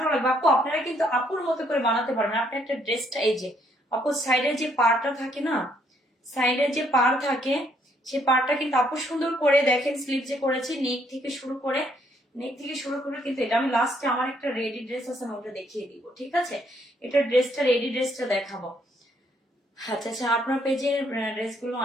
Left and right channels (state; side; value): normal; both; correlation 0.69